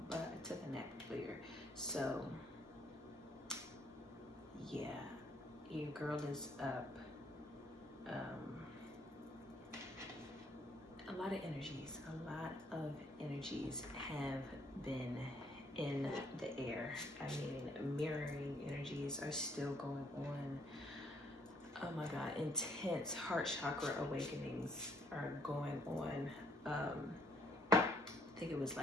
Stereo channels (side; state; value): both; normal; correlation 0.66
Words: but I took a nap earlier. So yeah, your girl is up. A lot of energies have been in the air. I mean, mirroring energies are still going on. Oh my God, intense heart chakra awakenings are going on. I think it was